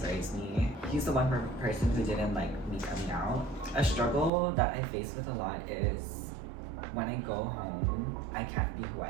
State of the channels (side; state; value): left; drops out; at 4.3 s